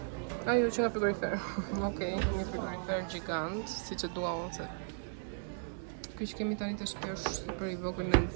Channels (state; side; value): silent; left; digital silence